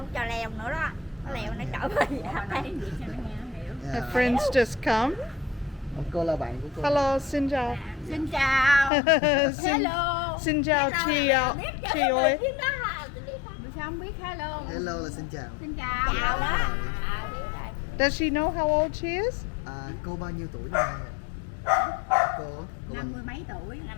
cho leo nữa đó. Nó leo nó trở về đây. Her friends just come. Cô là bạn của cô. Hello, xin chào. Xin chào. xin, Hello. xin chào chị chị ơi. Sao không biết hello? Hello là xin chào. Xin chào. Chào đó. Does she know how old she is? Cô bao nhiêu tuổi này? Cô 50 mấy tuổi.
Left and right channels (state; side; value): drops out; right; at 8.9 s